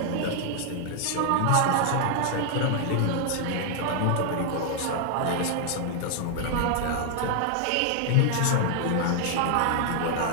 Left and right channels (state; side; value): different; both; correlation 0.00